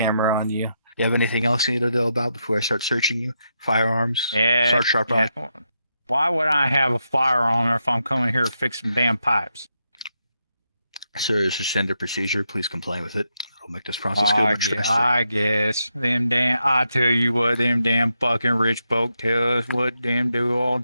on you. You have anything else you need to know about before I start searching you? Firearms? Yeah, Start sharp yeah. Why would I have a firearm if I'm coming here to fix some damn pipes? Sir, this is standard procedure. Please comply with it. It'll make this process go much faster. I guess. I tell you what, them damn fucking rich folk tell us what them do all the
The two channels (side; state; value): both; inverted; correlation -0.83